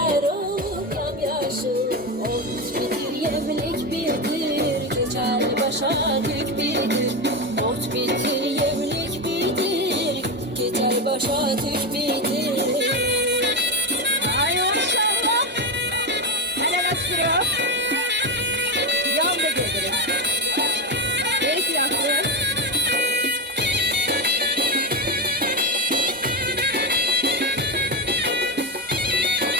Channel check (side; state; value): both; normal; correlation 0.14